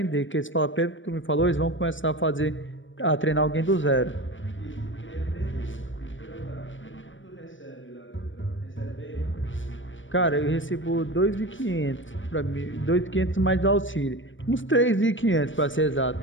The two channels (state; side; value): late; right; 0.56 ms